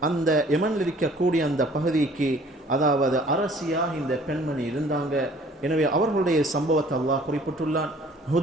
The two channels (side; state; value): both; normal; correlation 0.54